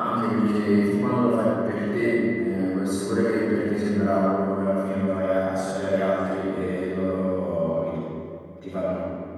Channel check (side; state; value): both; identical; correlation 1.00